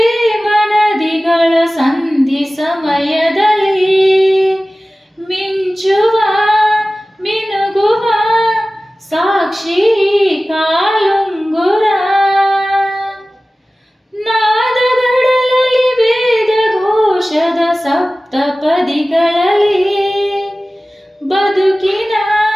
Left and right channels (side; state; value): both; normal; correlation 0.97